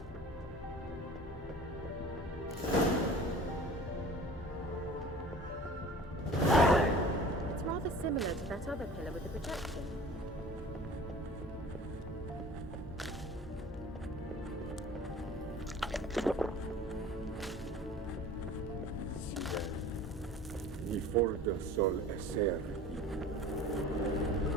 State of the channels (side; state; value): left; noise; hum, 13 dB below the sound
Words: Similar to that other pillar with the projection. Ni forda sol esser